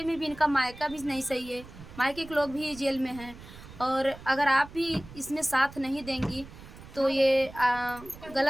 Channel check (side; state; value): right; noise; rumble, 17 dB below the sound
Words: में भी, इनका मायका भी नहीं सही है, मायके के लोग भी जेल में हैं। और अगर आप भी इसमें साथ नहीं देंगी तो ये